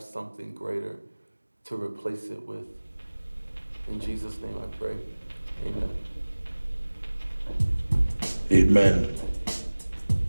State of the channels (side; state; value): both; inverted; correlation -1.00